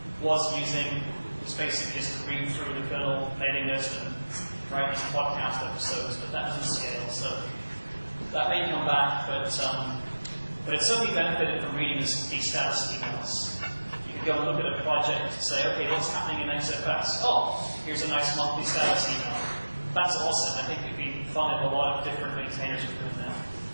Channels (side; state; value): both; inverted; correlation -1.00